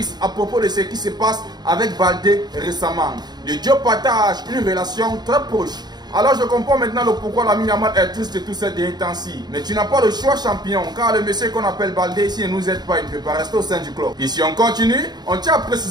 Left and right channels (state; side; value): late; left; 0.20 ms